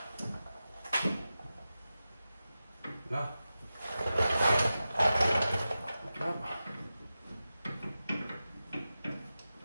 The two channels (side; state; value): both; inverted; correlation -0.93